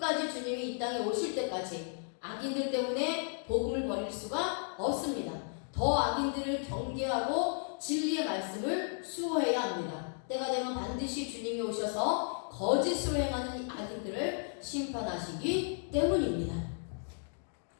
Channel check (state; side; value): silent; right; 55 dB below the other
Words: 주님이 이 땅에 오실 때까지 악인들 때문에 복음을 버릴 수가 없습니다. 더 악인들을 경계하고 진리의 말씀을 수호해야 합니다. 때가 되면 반드시 주님이 오셔서 거짓으로 행하는 악인들을 심판하시기 때문입니다.